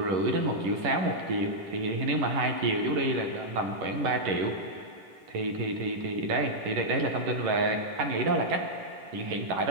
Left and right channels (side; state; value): left; late; 11 ms